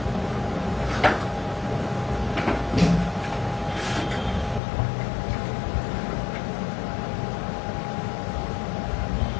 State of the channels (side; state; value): right; drops out; at 4.6 s